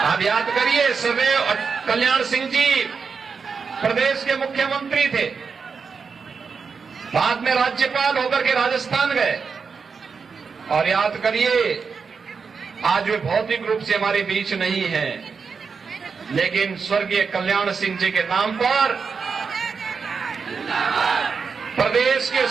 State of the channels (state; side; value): quieter; left; 5.4 dB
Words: आप याद करिए, सर्वैव कल्याण सिंह जी प्रदेश के मुख्यमंत्री थे, बाद में राज्यपाल होकर के राजस्थान गए। और याद करिए, आज वे भौतिक रूप से हमारे बीच नहीं हैं, लेकिन स्वर्गीय कल्याण सिंह जी के नाम पर प्रदेश के